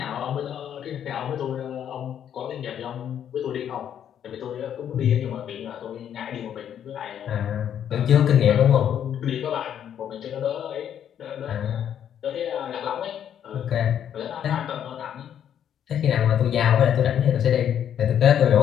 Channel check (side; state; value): right; quieter; 9.5 dB